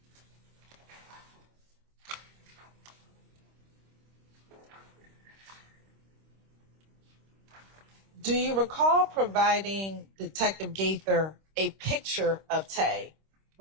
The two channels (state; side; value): late; left; 26 ms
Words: Do you recall providing Detective Gaither a picture of Tay